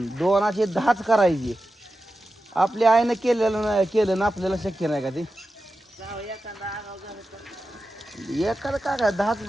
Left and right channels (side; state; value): both; normal; correlation 0.92